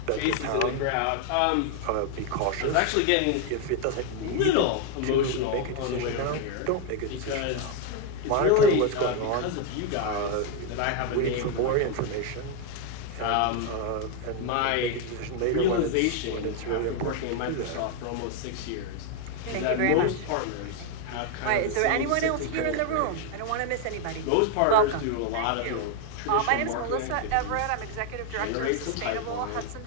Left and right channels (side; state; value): both; different; correlation 0.01